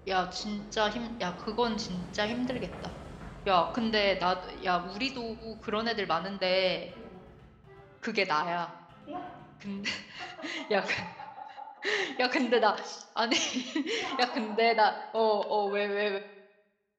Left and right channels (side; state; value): both; identical; correlation 1.00